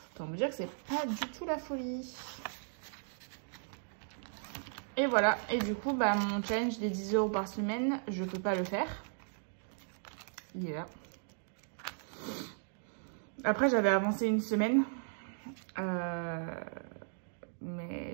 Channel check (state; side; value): silent; left; digital silence